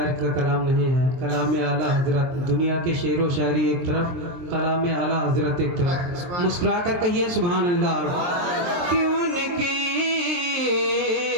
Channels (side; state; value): left; late; 23 ms